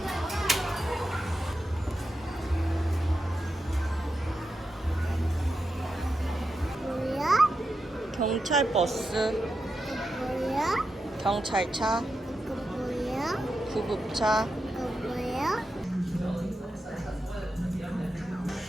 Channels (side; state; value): both; normal; correlation 0.88